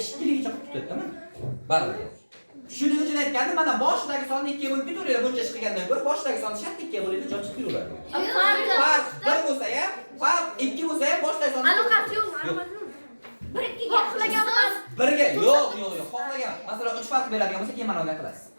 ligicha qilib tutadi-mi? Baribir. Shuning uchun aytgandim, mana boshidagi sonni 2 ga bo'lib ketaveradi. Buncha chiqgandan ko'ra boshidagi sonni shart 2 ga bo'ladi, joy chiqib yuraveradi. Farq 1 bo'lsa ham, farq 2 bo'lsa ham boshidagi sonni Aloqasi yo'qmi? Aloqasi yo'qmi? 1 2 ga xohlaganmiz. 1 ga yo'q, xohlagan. Masalan, 3 farq beradigan bo'lsa, keyin mana bunday qilasiz.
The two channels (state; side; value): inverted; both; correlation -1.00